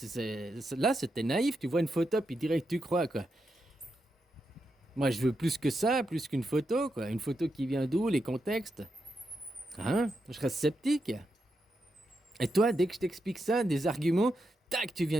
Là, c'était naïf, tu vois une photo puis direct tu crois, quoi. Moi, je veux plus que ça, plus qu'une photo, quoi. Une photo qui vient d'où, les contextes. Hein? Je reste sceptique. Et toi, dès que je t'explique ça, des arguments, tac, tu viens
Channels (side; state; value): both; normal; correlation 0.85